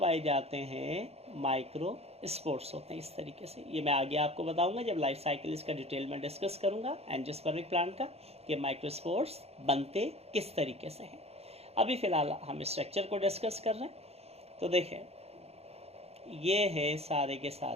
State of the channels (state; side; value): late; left; 0.30 ms